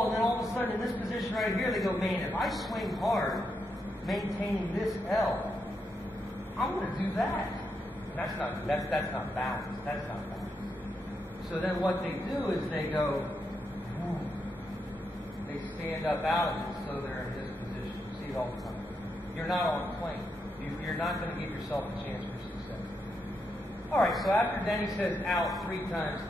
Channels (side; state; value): both; normal; correlation 0.82